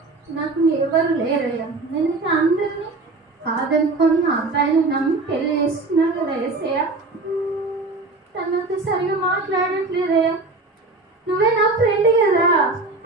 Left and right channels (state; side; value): quieter; left; 3.4 dB